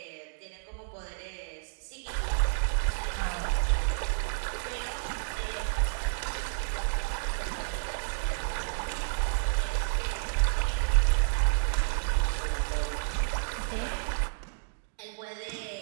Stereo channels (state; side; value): silent; left; digital silence